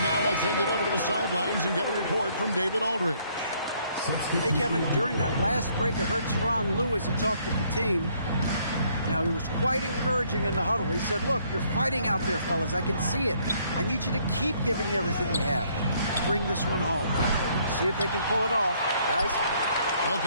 now, I'll send it over to the sidelines and get a report from David Aldridge. Hey, Kevin, during that last break, I heard Tyronn Lue as he talked with the team. Now, he was quite encouraging in the huddle. He said, look, you're fighting out there, fellas. I can see it. I need you to keep giving everything you have. Bring this one home. See if they can pull it off, guys.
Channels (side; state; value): both; inverted; correlation -0.66